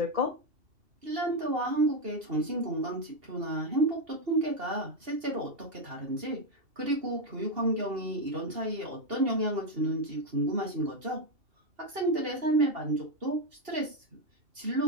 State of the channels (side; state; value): left; late; 2.8 ms